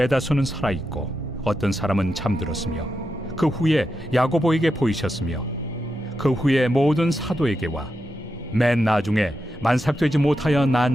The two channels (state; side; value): normal; both; correlation 0.87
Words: 살아있고 어떤 사람은 잠들었으며 그 후에 야고보에게 보이셨으며 그 후에 모든 사도에게와 맨 나중에 만삭되지 못하여